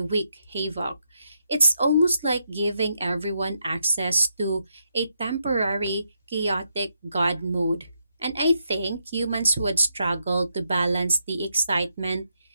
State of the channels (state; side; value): inverted; both; correlation -0.81